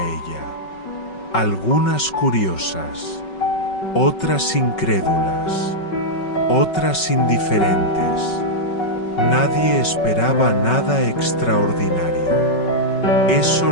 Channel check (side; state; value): right; late; 5.4 ms